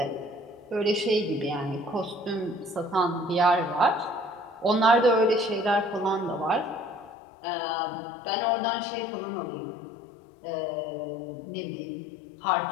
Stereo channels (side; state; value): right; drops out; at 7.2 s